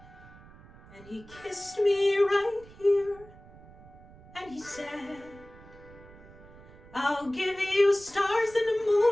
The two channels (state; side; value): noise; right; rumble, 21 dB below the sound